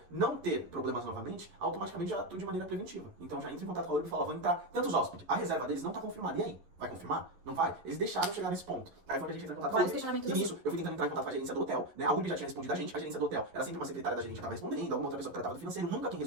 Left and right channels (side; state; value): left; late; 11 ms